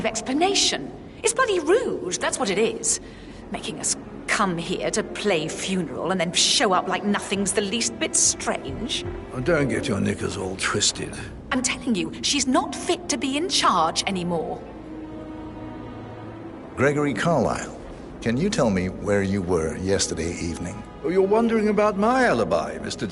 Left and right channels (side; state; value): both; identical; correlation 1.00